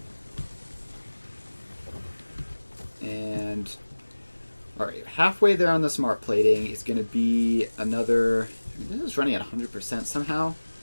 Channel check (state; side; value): inverted; both; correlation -1.00